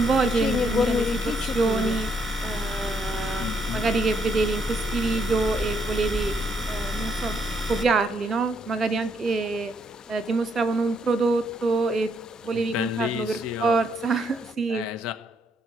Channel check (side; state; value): both; normal; correlation 0.73